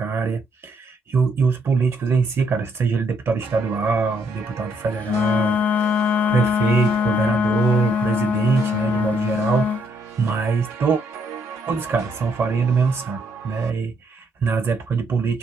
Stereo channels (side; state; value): both; normal; correlation 0.72